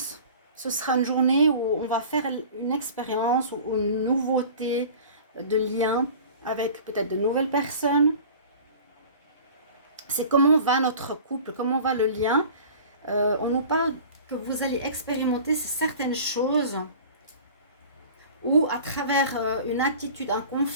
Ce sera une journée où on va faire une expérience ou une nouveauté de lien avec peut-être de nouvelles personnes. C'est comment va notre couple, comment va le lien. On nous parle que vous allez expérimenter certaines choses ou à travers une attitude, un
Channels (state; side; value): inverted; both; correlation -0.42